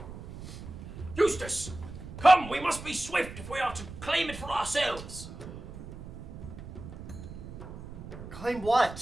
"Eustace, come! We must be swift if we are to claim it for ourselves." Claim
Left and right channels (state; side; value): noise; right; rumble, 12 dB below the sound